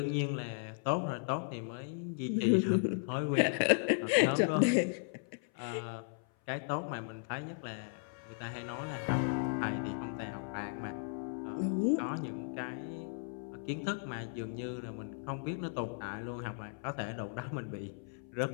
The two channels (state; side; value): silent; right; 54 dB below the other